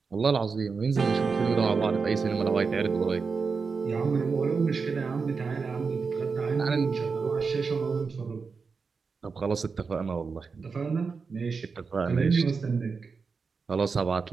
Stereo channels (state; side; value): quieter; left; 5.0 dB